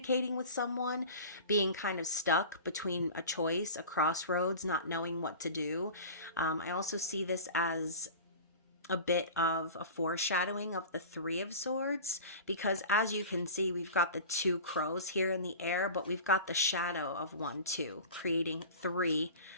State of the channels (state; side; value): inverted; both; correlation -0.36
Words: with someone, being kind of stuck between a choice, a crossroads, not knowing what to do. I also see this as a bit of a foreshadowing of the Three of Swords, because as you can see, we've got the two crows here in the air, but we've got the shadow of 1, 2, creating 3